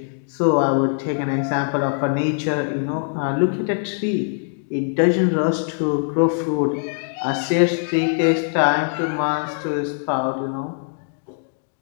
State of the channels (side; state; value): right; silent; 64 dB below the other